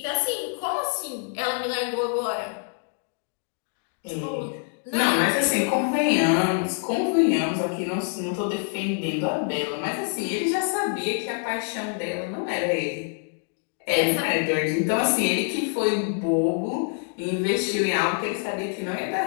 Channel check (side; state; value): right; silent; 58 dB below the other